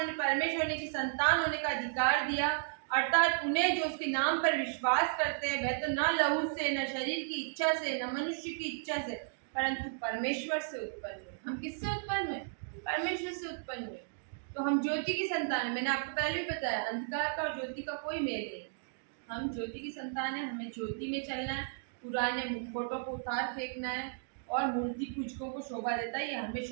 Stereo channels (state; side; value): silent; left; digital silence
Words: परमेश्वर की संतान होने का अधिकार दिया, अर्थात उन्हें जो उसके नाम पर विश्वास करते हैं, वह तो न लहू से, न शरीर की इच्छा से, न मनुष्य की इच्छा से, परंतु परमेश्वर से उत्पन्न हुए। हम किससे उत्पन्न हुए? परमेश्वर से उत्पन्न हुए। तो हम ज्योति की संतान है। मैंने आपको पहले भी बताया, अंधकार का और ज्योति का कोई मेल नहीं। हम ज्योति की संतान है, हमें ज्योति में चलना है, पुराने मुखौटों को उतार फेंकना है और मूर्ति पूजकों को शोभा देता है, ये हमें